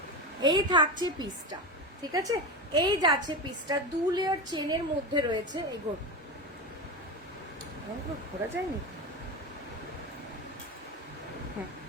এই থাকছে পিসটা, ঠিক আছে, এই যাচ্ছে পিসটা। 2 লেয়ার চেনের মধ্যে রয়েছে। এই ঘোরা যায়নি,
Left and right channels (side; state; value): both; normal; correlation 0.20